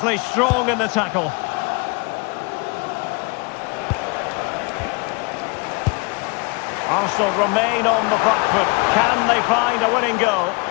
strong in the tackle. Arsenal remain on the back foot. Can they find a winning goal?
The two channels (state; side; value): quieter; right; 30.1 dB